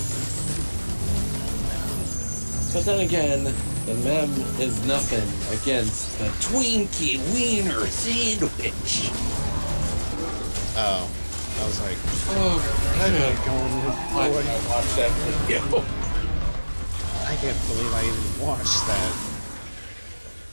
But then again, the mem is nothing against the Twinkie Wiener Sandwich. Oh, I was like, oh, I gotta go and watch that video. I can't believe I even watched that.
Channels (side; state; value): both; inverted; correlation -1.00